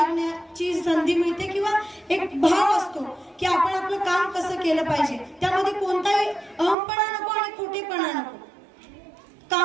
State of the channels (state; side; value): drops out; left; at 6.8 s